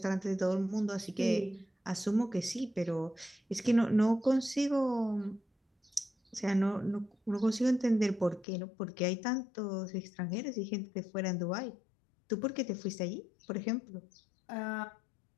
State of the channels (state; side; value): drops out; right; at 8.5 s